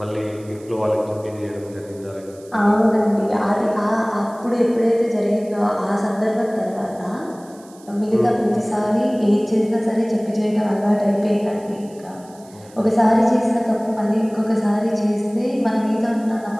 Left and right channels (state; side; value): noise; right; hiss, 26 dB below the sound